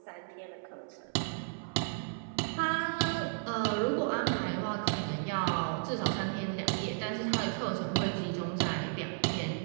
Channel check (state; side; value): silent; left; 55 dB below the other